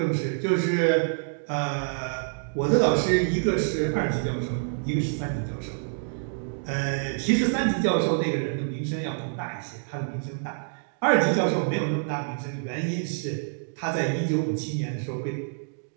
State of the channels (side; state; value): left; silent; digital silence